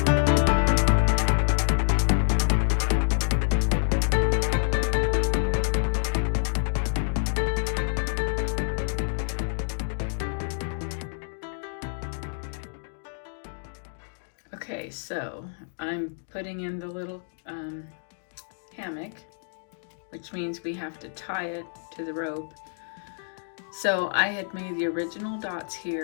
Okay, so I'm putting in the little hammock, which means we have to tie it to the rope. So I had made the original dots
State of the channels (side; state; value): right; silent; digital silence